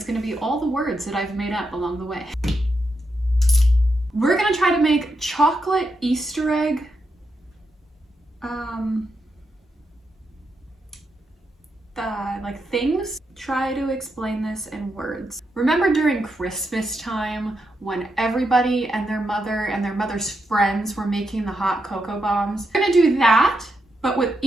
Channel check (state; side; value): normal; both; correlation 0.84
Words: going to be all the words that I've made up along the way. We're going to try to make chocolate Easter egg things. Try to explain this in words. Remember during Christmas time when everybody and their mother's friends were making the hot cocoa bombs? We're gonna do that, but with